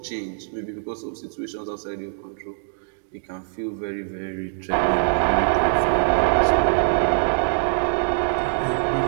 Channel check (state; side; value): silent; left; digital silence